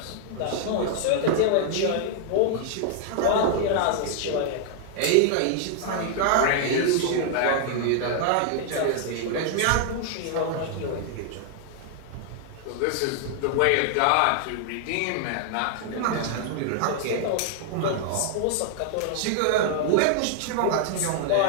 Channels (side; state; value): both; different; correlation 0.00